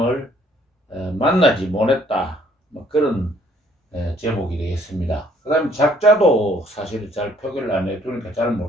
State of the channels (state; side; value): normal; both; correlation 0.62